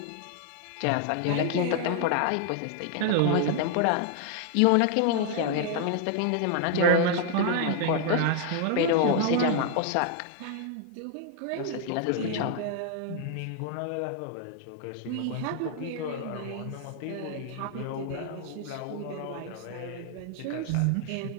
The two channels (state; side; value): different; both; correlation 0.00